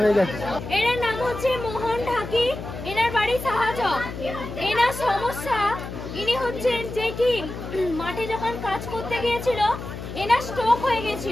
হয়ে গেছে। এনার নাম হচ্ছে মোহন ঢাকি, এনার বাড়ি সাহায্য। এনার সমস্যা ইনি হচ্ছেন যে কি মাঠে যখন কাজ করতে গিয়েছিল এনার স্ট্রোক হয়ে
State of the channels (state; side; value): noise; left; hum, 9 dB below the sound